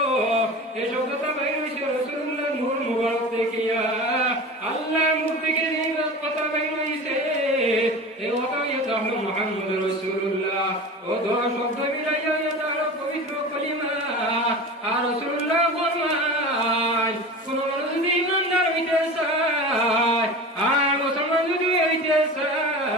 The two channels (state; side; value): normal; both; correlation 0.33